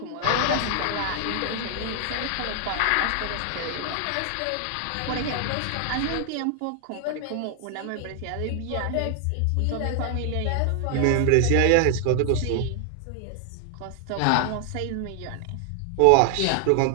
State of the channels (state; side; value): different; both; correlation 0.00